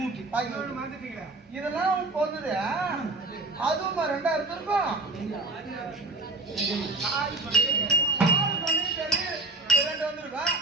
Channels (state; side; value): quieter; left; 3.1 dB